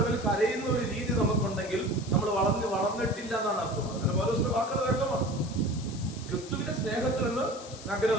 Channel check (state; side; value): noise; left; hiss, 16 dB below the sound